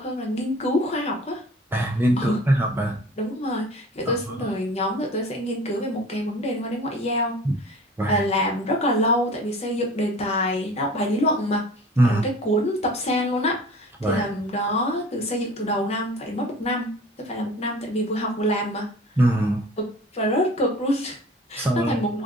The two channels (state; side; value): normal; both; correlation 0.43